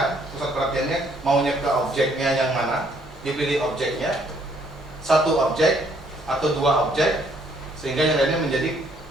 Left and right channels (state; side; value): normal; both; correlation 0.66